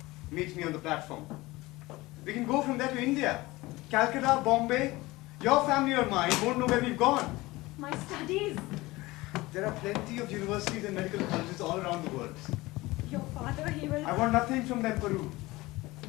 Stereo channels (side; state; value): right; quieter; 20.3 dB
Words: Meet me on the platform. We can go from there to India. Calcutta, Bombay. Your family or mine won't know where we've gone. My studies. There are plenty of universities and medical colleges all around the world. Your father, he will... I want nothing from them, Peru.